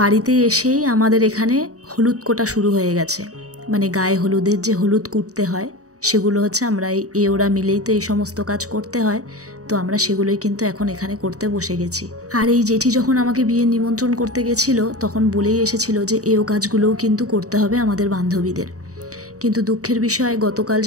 বাড়িতে এসেই আমাদের এখানে হলুদ কোটা শুরু হয়ে গেছে, মানে গায়ে হলুদের যে হলুদ কুটতে হয় সেগুলো হচ্ছে আমরা ওরা মিলেই তো এই সমস্ত কাজ করতে হয়। তো আমরা সেগুলোই কিন্তু এখন এখানে করতে বসে গেছি। আর এই জেঠি যখন আমাকে বিয়ে নিমন্ত্রণ করতে গেছিল, তখন বলেই এসেছিল যে কাজগুলোও কিন্তু করতে হবে আমাদের বান্ধবীদের। কিন্তু দুঃখের বিষয়, গতকাল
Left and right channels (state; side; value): late; left; 0.66 ms